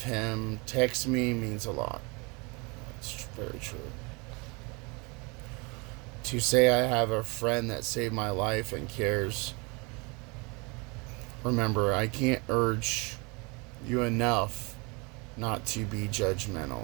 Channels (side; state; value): left; quieter; 29.2 dB